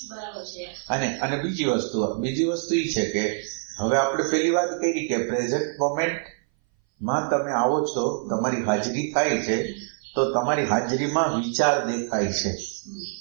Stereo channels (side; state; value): left; silent; 59 dB below the other